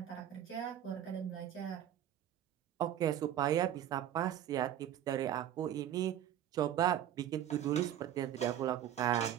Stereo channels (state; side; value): quieter; left; 11.1 dB